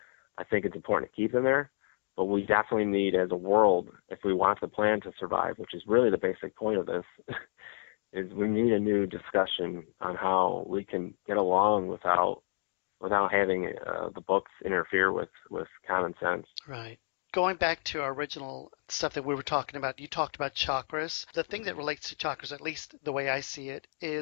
I think it's important to keep them there. But we definitely need, as a world, if we want the plan to survive, which is really the basic point of this, is we need a new discussion on how we can get along without having the books interfere with common sense. Right. Going back to our original stuff that we were talking about, you talked about chakras. The thing that relates to chakras, at least the way I see it,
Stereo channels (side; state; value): right; silent; digital silence